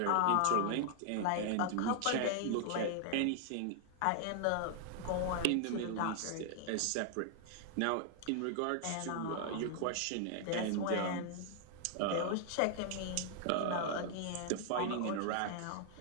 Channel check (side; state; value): both; different; correlation 0.00